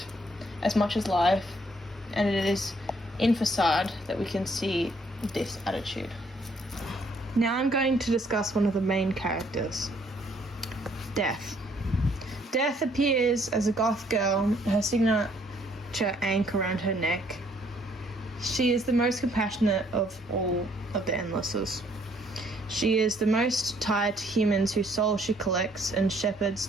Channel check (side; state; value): both; normal; correlation 0.65